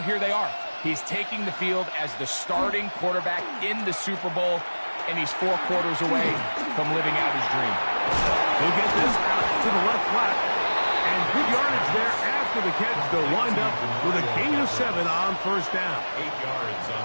here they are. He's taking the field as the starting quarterback in the Super Bowl, and he's 4 quarters away from living out his dream. He'll get this out to the left flat, and Good yardage there after the catch. They'll wind up with a gain of 7 on first down. 8 yards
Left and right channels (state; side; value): inverted; both; correlation -1.00